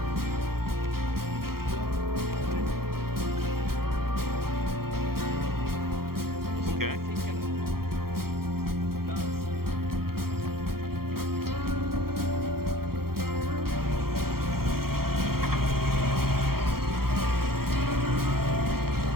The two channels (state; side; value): late; left; 0.94 ms